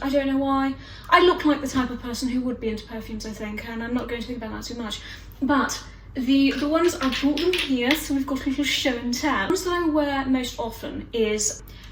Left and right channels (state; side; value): identical; both; correlation 1.00